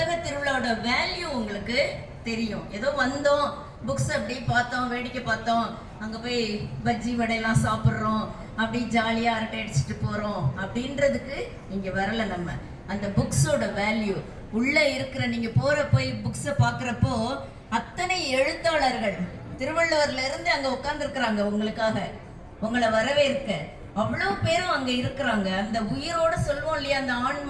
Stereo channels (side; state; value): both; identical; correlation 1.00